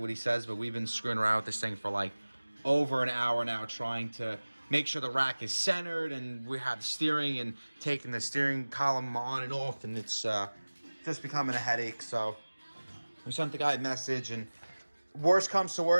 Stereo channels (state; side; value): inverted; both; correlation -1.00